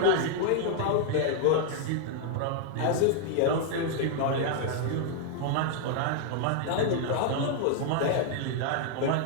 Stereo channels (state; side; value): different; both; correlation 0.00